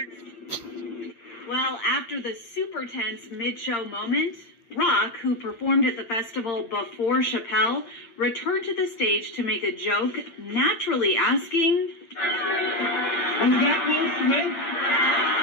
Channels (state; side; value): late; right; 8.7 ms